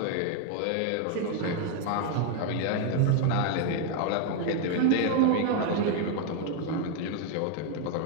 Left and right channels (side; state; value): both; different; correlation 0.00